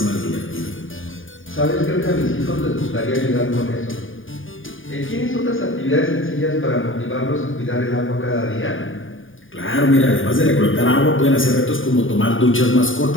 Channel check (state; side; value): late; right; 0.58 ms